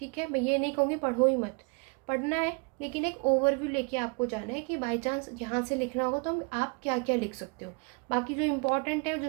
है। मैं ये नहीं कहूँगी पढ़ो ही मत, पढ़ना है, लेकिन एक ओवरव्यू लेके आपको जाना है कि बाई चांस यहाँ से लिखना होगा तो आप क्या क्या लिख सकते हो। बाकी जो इम्पोर्टेंट है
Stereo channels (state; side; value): quieter; left; 34.1 dB